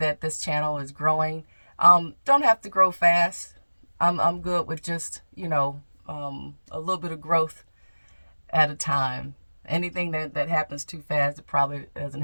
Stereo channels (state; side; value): inverted; both; correlation -1.00